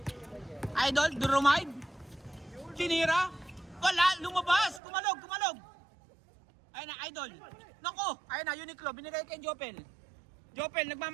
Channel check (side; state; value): left; drops out; at 4.8 s